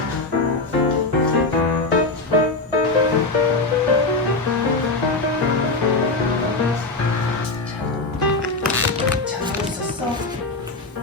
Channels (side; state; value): right; quieter; 3.3 dB